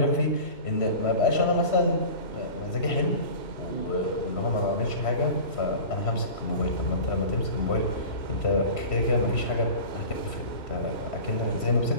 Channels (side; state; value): right; late; 3.1 ms